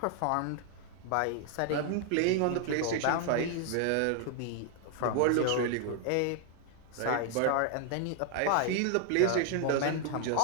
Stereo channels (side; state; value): both; different; correlation 0.00